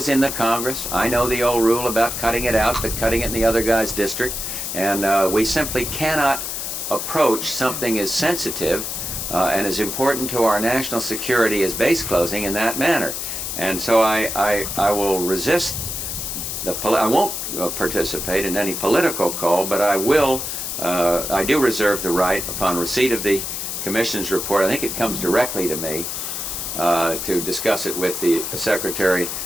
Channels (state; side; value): noise; left; hiss, 4 dB below the sound